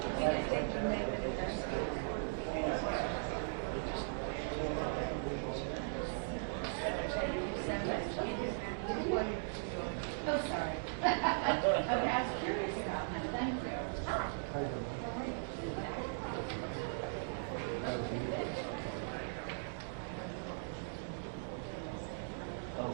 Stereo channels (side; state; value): left; silent; digital silence